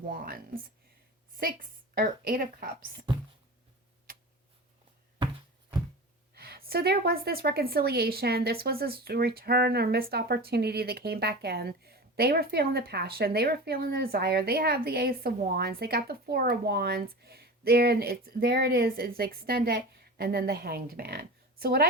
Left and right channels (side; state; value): both; normal; correlation 0.31